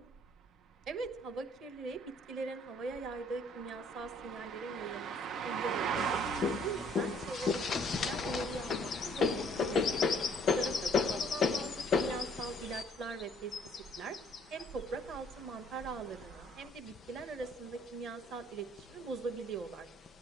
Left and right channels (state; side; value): normal; both; correlation 0.61